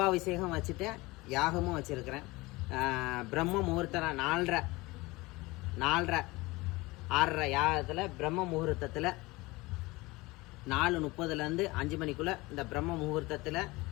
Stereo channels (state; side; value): quieter; right; 22.0 dB